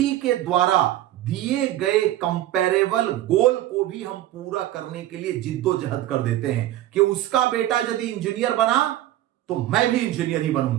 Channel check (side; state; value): left; quieter; 14.1 dB